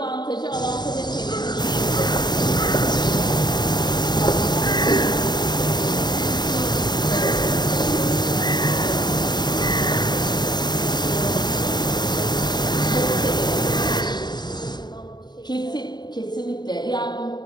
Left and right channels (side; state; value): right; late; 0.21 ms